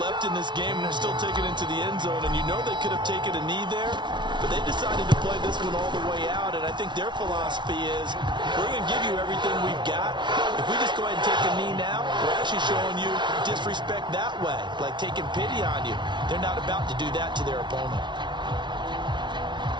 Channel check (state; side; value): late; left; 0.23 ms